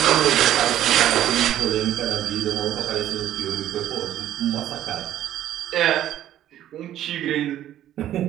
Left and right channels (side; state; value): left; quieter; 12.2 dB